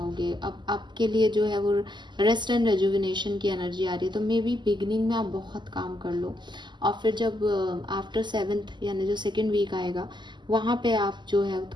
अब आपके लिए जो है वो रेस्ट एंड रेजुविनेशन की एनर्जी आ रही है, तो मे बी बिगनिंग में आप बहुत काम कर लो और फिर जब आफ्टर 7th यानी जो 2nd वीक आएगा वहाँ पे आप जो है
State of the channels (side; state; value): left; late; 0.21 ms